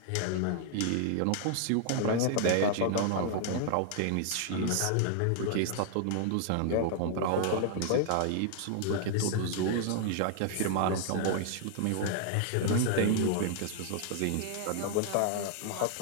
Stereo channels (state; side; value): different; both; correlation 0.00